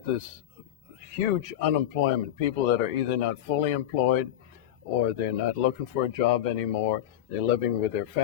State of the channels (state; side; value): quieter; right; 11.7 dB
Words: this huge unemployment, people that are either not fully employed or they're not looking for a job anymore, they're living with their